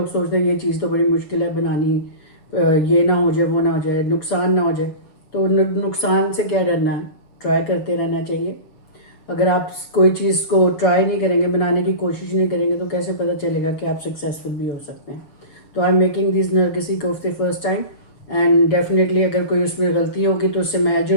सोचते हैं ये चीज़ तो बड़ी मुश्किल है बनानी, ये ना हो जाए वो ना हो जाए नुकसान ना हो जाए। तो नुकसान से क्या डरना है, ट्राई करते रहना चाहिए। अगर आप कोई चीज़ को ट्राई नहीं करेंगे, बनाने की कोशिश नहीं करेंगे, तो कैसे पता चलेगा कि आप सक्सेसफुल भी हो सकते हैं। तो आई एम मेकिंग दिस नरगिसी कोफ्ते फर्स्ट टाइम एंड डेफिनेटली अगर कोई उसमें गलती होगी तो उससे मैं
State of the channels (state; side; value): late; right; 7.3 ms